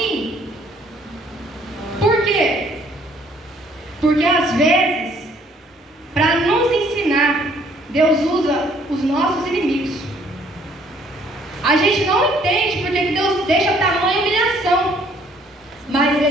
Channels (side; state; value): both; normal; correlation 0.62